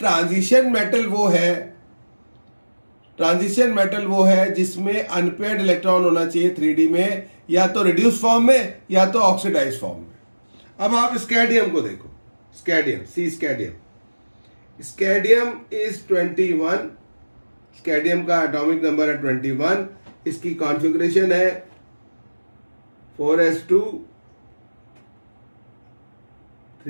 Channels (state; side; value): inverted; both; correlation -1.00